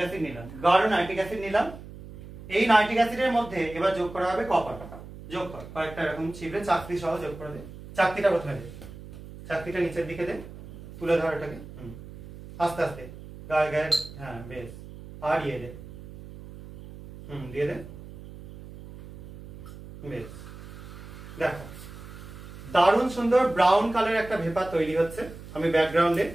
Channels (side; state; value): right; noise; hum, 15 dB below the sound